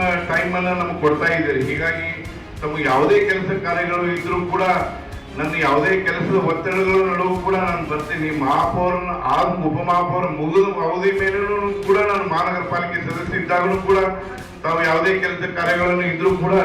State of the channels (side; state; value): both; identical; correlation 1.00